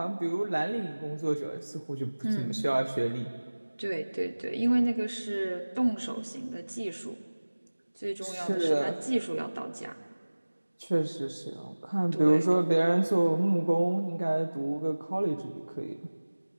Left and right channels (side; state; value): both; inverted; correlation -1.00